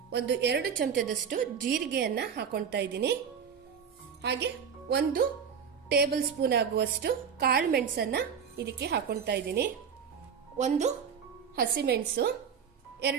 ಒಂದು 2 ಚಮಚದಷ್ಟು ಜೀರಿಗೆಯನ್ನ ಹಾಕೊಳ್ತಾ ಇದ್ದೀನಿ. ಹಾಗೆ 1 ಟೇಬಲ್ ಸ್ಪೂನ್ ಆಗುವಷ್ಟು ಕಾಳು ಮೆಣಸನ್ನ ಇದಕ್ಕೆ ಹಾಕೊಳ್ತಾ ಇದ್ದೀನಿ. 1 ಹಸಿಮೆಣಸು,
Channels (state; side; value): quieter; left; 7.2 dB